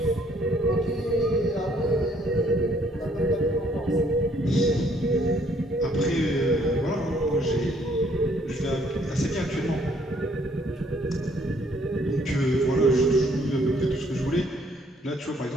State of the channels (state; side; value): normal; both; correlation 0.65